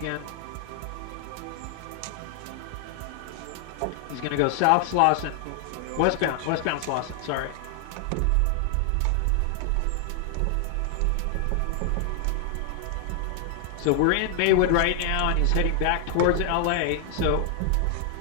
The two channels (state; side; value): different; both; correlation 0.00